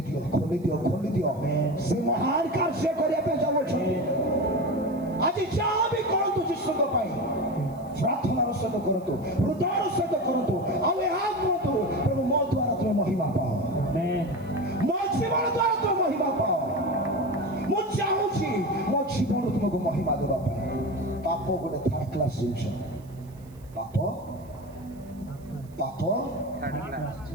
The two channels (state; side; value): noise; right; hiss, 29 dB below the sound